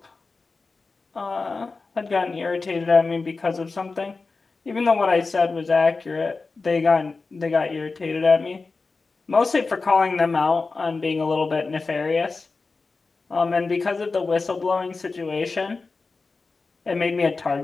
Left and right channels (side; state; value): right; quieter; 4.0 dB